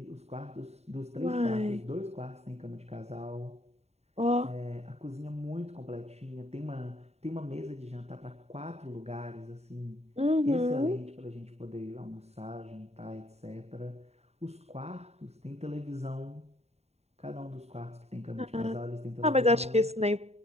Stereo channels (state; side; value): late; left; 0.31 ms